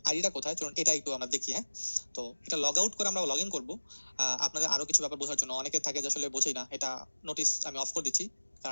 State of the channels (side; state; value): both; inverted; correlation -1.00